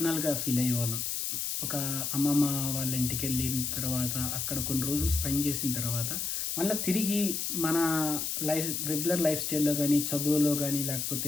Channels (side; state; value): left; noise; hiss, 2 dB below the sound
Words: ఫీల్ అయ్యేవాళ్ళం. ఒక అమ్మమ్మ వాళ్ళ ఇంటికి వెళ్ళిన తర్వాత అక్కడ కొన్ని రోజులు స్పెండ్ చేసిన తర్వాత మళ్ళీ తిరిగి మన రెగ్యులర్ లైఫ్ స్టైల్లో కానీ, చదువులో కానీ,